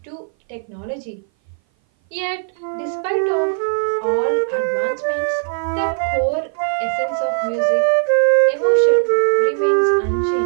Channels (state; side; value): silent; left; 58 dB below the other